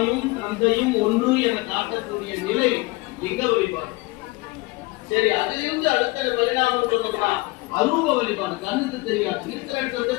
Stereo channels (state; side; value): quieter; right; 23.0 dB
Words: தந்தையும் ஒன்று என காட்டக்கூடிய நிலை எங்க வழிபாடு. சரி, அதிலிருந்து அடுத்த பரிணாமம் சொன்னோம்னா அரூப வழிபாடு. கண்ணுக்கு தெரியாது, இருக்கிற இடத்துல